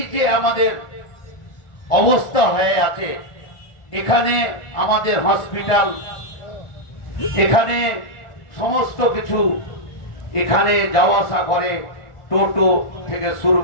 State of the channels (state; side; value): late; right; 1.4 ms